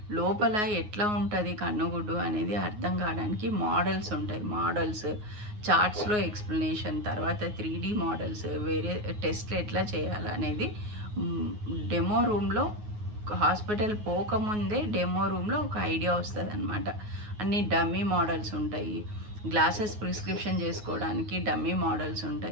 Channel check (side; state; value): left; late; 9.5 ms